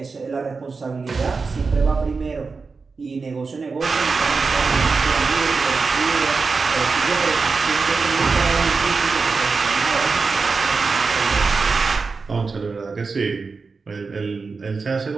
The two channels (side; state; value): left; quieter; 4.5 dB